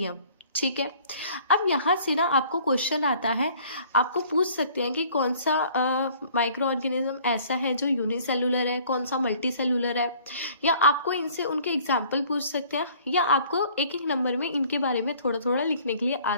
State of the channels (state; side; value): inverted; both; correlation -0.55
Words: ठीक है। अब यहाँ से ना आपको क्वेश्चन आता है, आपको पूछ सकते हैं कि कौन सा माइक्रो ऑर्गेनिज्म ऐसा है जो यूनिसेलुलर है, कौन सा मल्टी सेलुलर है, या आपको इनसे उनके एग्जाम्पल पूछ सकते हैं, या आपको एक एक नंबर में इनके बारे में थोड़ा थोड़ा लिखने के लिए आ